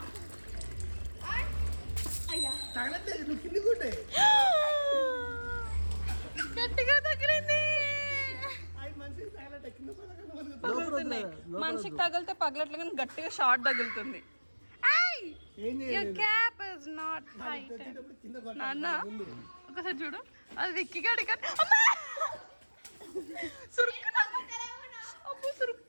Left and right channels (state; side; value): inverted; both; correlation -1.00